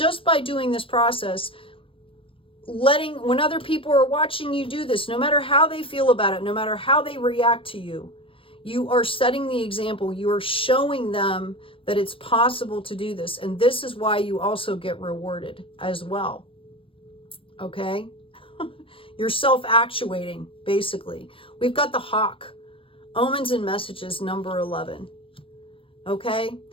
by doing this process, letting, when other people are watching you do this, no matter how they feel about it, no matter how they react to you, you are setting the example. You are showing them that it's possible to do this. And this is why you also get rewarded as well. Okay? You're self-actuating, basically. We've got the Hawk. Omens and Messages, number 11. Okay?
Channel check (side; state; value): right; late; 0.26 ms